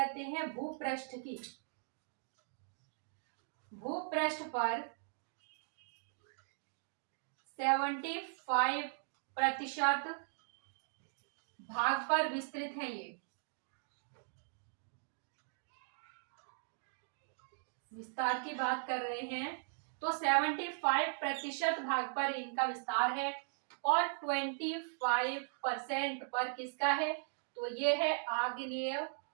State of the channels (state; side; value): silent; left; digital silence